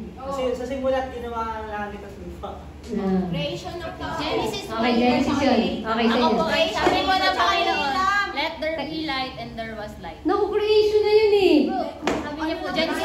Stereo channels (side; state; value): both; identical; correlation 1.00